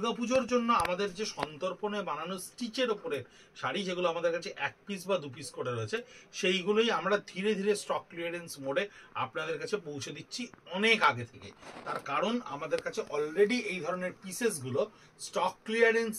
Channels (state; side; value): identical; both; correlation 1.00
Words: জন্য আমাদের যে সন্তর্পণে বানানো স্টিচের ওপরে শাড়ি, যেগুলো আমাদের কাছে এক পিস বা দু পিস করে রয়েছে, সেইগুলোই আমরা ধীরে ধীরে স্টক ক্লিয়ারেন্স মোডে আপনাদের কাছে পৌঁছে দিচ্ছি অনেক আগে থেকে। তার কারণ আমাদের কাছে অলরেডি এই ধরনের পিসেসগুলো স্টক